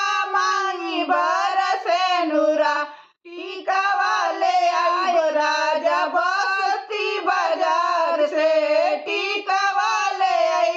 मांगी बरसे नूरा, टीका वाले आइब राजा बस्ती बाजार से, टीका वाले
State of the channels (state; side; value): identical; both; correlation 1.00